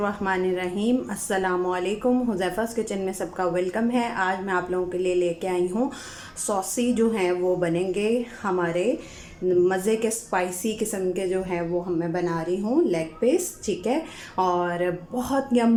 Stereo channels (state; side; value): identical; both; correlation 1.00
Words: अस्सलामुअलैकुम। हुज़ैफ़ा's किचन में सबका वेलकम है। आज मैं आप लोगों के लिए लेके आई हूँ सॉसी जो हैं वो बनेंगे हमारे मज़े के स्पाइसी किस्म के जो हैं वो मैं बना रही हूँ लेग पीस, ठीक है। और बहुत